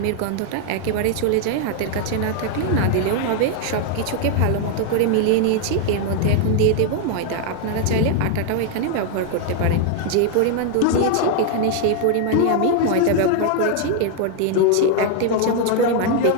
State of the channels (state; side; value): different; both; correlation 0.00